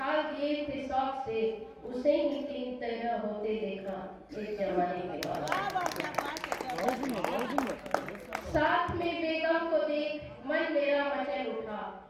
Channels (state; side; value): identical; both; correlation 1.00